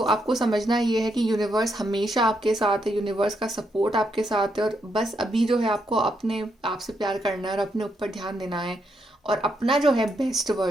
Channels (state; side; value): normal; both; correlation 0.78